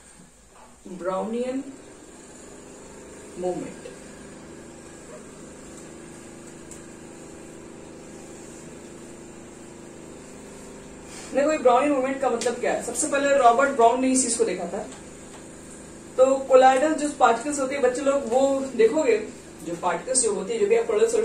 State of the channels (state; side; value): identical; both; correlation 1.00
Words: Brownian movement. देखो ये ब्राउनियन मूवमेंट का मतलब क्या है? सबसे पहले रॉबर्ट ब्राउन ने इस चीज को देखा था। तो कोलाइडल जो पार्टिकल्स होती है बच्चे लोग, वो देखोगे जो पार्टिकल्स जो होती है, जो भी आप कोलाइडल